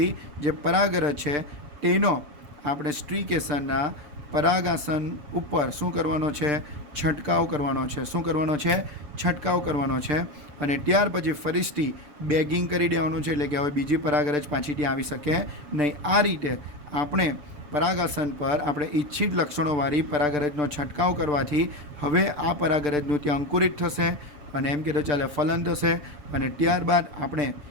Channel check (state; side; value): late; left; 6.8 ms